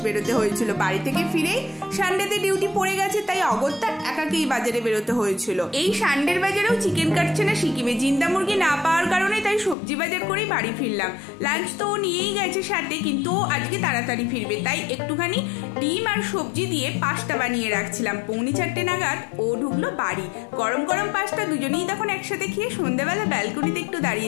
বেরোতে হয়েছিল। বাড়ি থেকে ফিরেই সানডেতে ডিউটি পড়ে গেছে, তাই অগত্যা একাকেই বাজারে বেরোতে হয়েছিল। এই সানডের বাজারেও চিকেন কাটছে না সিকিমে, জিন্দা মুরগি না পাওয়ার কারণে, তাই সবজি বাজার করেই বাড়ি ফিরলাম। লাঞ্চ তো ও নিয়েই গেছে সাথে, কিন্তু ও আজকে তাড়াতাড়ি ফিরবে, তাই একটুখানি ডিম আর সবজি দিয়ে পাস্তা বানিয়ে রাখছিলাম। 4:45 নাগাদ ও ঢুকলো বাড়ি। গরম গরম পাস্তা দুজনেই তখন একসাথে খেয়ে সন্ধ্যাবেলা ব্যালকনিতে একটু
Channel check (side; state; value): right; drops out; at 9.8 s